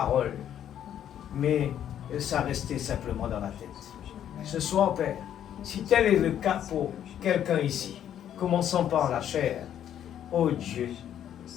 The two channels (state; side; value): quieter; right; 10.2 dB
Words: mais ça restait simplement dans la tête. Ce soir, Père, si tel est le cas pour quelqu'un ici, commençons par la chair. Oh Dieu,